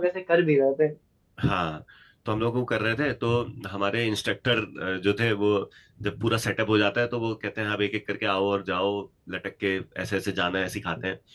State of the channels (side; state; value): both; identical; correlation 1.00